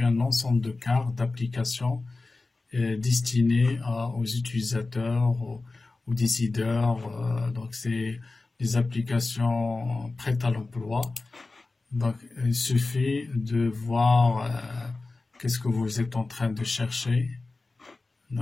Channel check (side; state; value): right; quieter; 3.4 dB